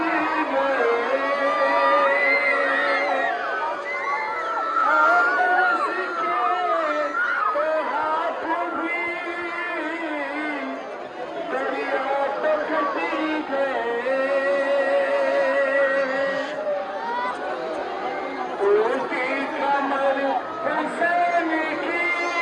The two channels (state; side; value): identical; both; correlation 1.00